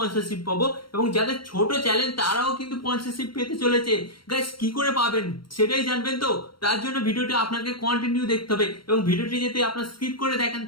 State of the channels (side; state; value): right; late; 0.73 ms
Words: পাবো এবং যাদের ছোট চ্যানেল তারাও কিন্তু স্পন্সরশিপ পেতে চলেছে। গাইস কি করে পাবেন সেটাই জানবেন, তো তার জন্য ভিডিওটি আপনাকে কন্টিনিউ দেখতে হবে এবং ভিডিওটি যদি আপনার স্কিপ করে দেখেন